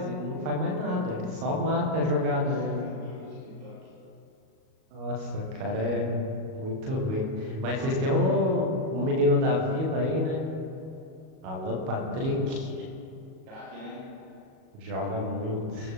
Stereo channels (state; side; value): late; left; 38 ms